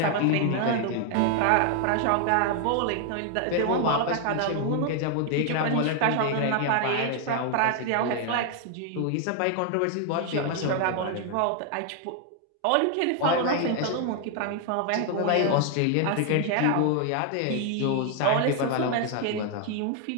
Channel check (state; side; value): different; both; correlation 0.00